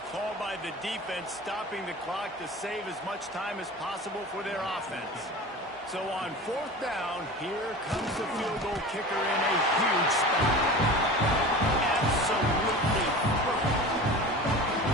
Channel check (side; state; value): both; normal; correlation 0.35